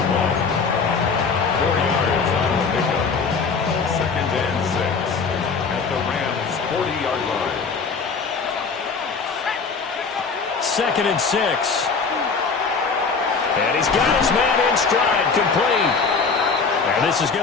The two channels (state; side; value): quieter; right; 5.0 dB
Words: 4 yards on the pickup. 2nd and 6 at the Rams' 40-yard line. 2nd and 6. And he's got his man in stride, complete. And this is